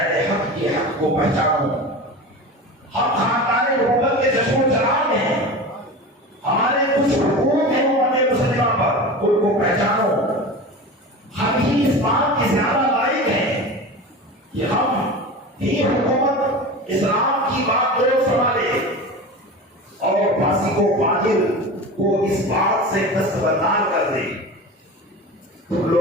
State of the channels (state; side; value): normal; both; correlation 0.31